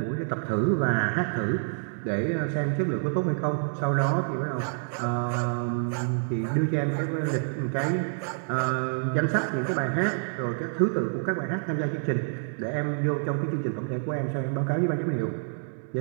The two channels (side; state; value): left; silent; digital silence